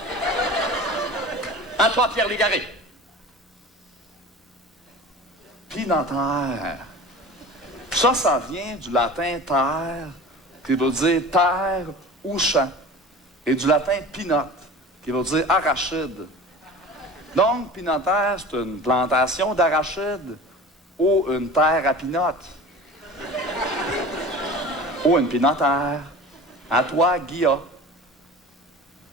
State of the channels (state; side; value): normal; both; correlation 0.38